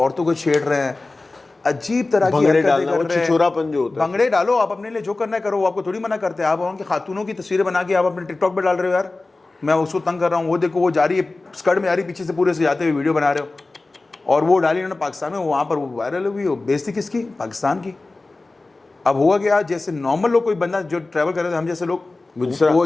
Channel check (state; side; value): quieter; right; 3.3 dB